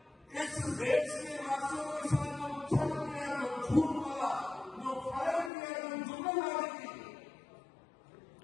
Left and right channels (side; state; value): right; drops out; at 5.5 s